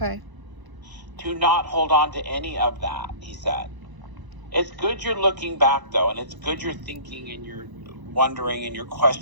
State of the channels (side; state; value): left; late; 1.0 ms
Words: To not hold on to any of that, he said. It's good you're looking back, though, and it's good you're thinking and you're wondering and you're